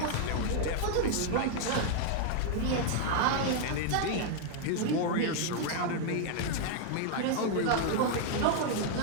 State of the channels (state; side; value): different; both; correlation 0.00